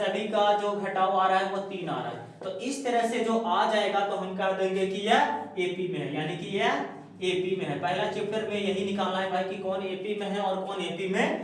का जो घटाव आ रहा है वो 3 आ रहा है। तो इस तरह से जो आ जाएगा तो हम कह देंगे कि यह AP में है, यानी कि यह AP में है। पहला चैप्टर में यही निकालना है भाई कि कौन AP में है और कौन AP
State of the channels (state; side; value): identical; both; correlation 1.00